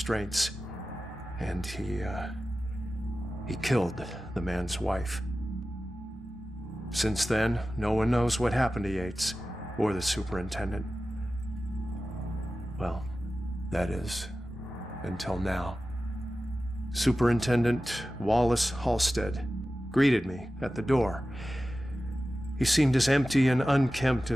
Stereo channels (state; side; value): normal; both; correlation 0.95